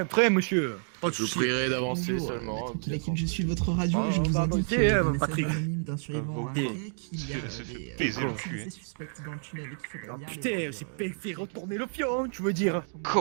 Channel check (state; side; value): silent; left; 58 dB below the other